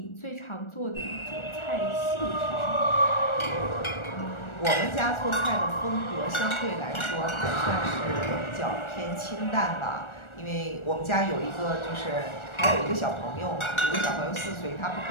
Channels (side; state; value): right; late; 1.4 ms